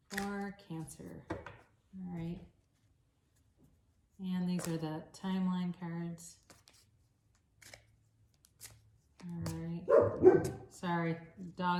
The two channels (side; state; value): both; identical; correlation 1.00